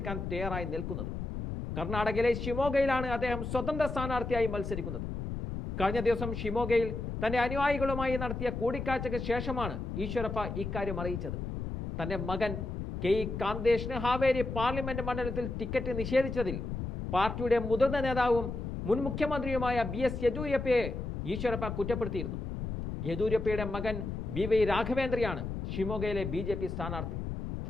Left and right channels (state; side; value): noise; left; rumble, 5 dB below the sound